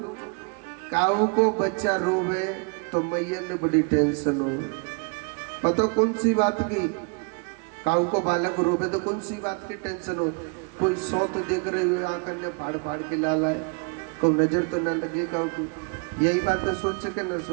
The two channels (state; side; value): quieter; left; 34.8 dB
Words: काऊ को बच्चा रोवे तो मैया ने बड़ी टेंशन हो। पता कौन सी बात की? काऊ को बालक रोवे तो कौन सी बात की टेंशन हो? कोई सौ तो देख रहे हो आकर ने फाड़ फाड़ के लाला है, कोई नजर तो ना लगे काऊ की। यही बात है, सोचे के ना